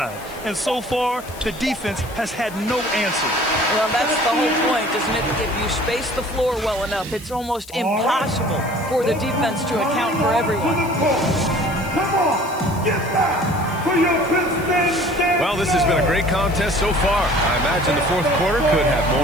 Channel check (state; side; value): noise; left; hiss, 19 dB below the sound